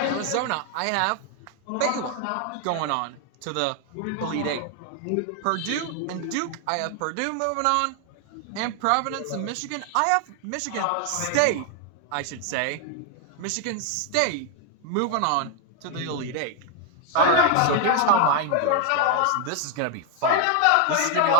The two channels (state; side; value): different; both; correlation 0.00